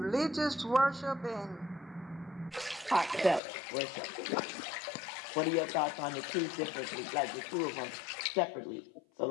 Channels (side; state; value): right; drops out; at 3.4 s